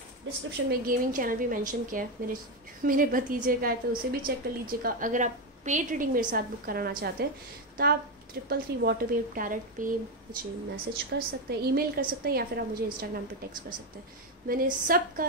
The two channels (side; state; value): both; normal; correlation 0.09